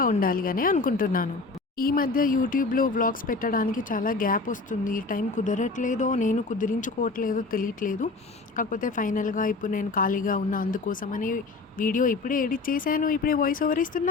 అనే అనుకుంటున్నాను. ఈ మధ్య యూట్యూబ్‌లో వ్లాగ్స్ పెట్టడానికి చాలా గ్యాప్ వస్తుంది. టైం కుదరట్లేదో, నేను కుదిరించుకోవట్లేదో తెలియట్లేదు. కాకపోతే ఫైనల్‌గా ఇప్పుడు నేను ఖాళీగా ఉన్నా. అందుకోసమని వీడియో ఇప్పుడే ఎడిట్ చేశాను. ఇప్పుడే వాయిస్ ఓవర్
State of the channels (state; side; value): quieter; right; 3.8 dB